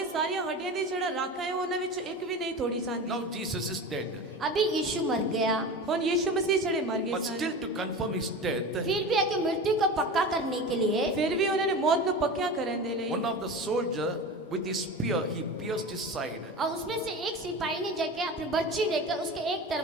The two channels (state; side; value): normal; both; correlation 0.30